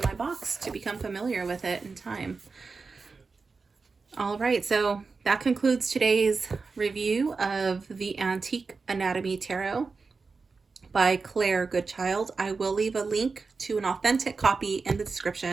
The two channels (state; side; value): quieter; left; 4.5 dB